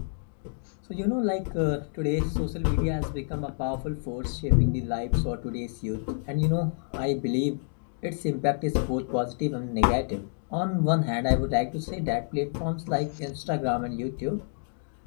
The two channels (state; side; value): silent; right; 59 dB below the other